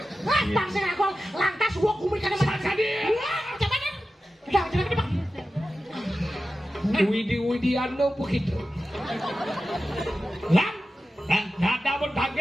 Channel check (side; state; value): both; normal; correlation 0.93